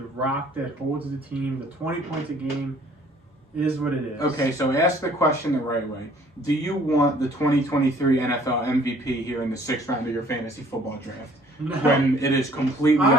rock that holds the team, the 20 points a game? Is what it is. Okay, so ask the question the right way. Do you want the 2023 NFL MVP here in the 6th round of your fantasy football draft? No. When it is completely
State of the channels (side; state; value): both; normal; correlation 0.57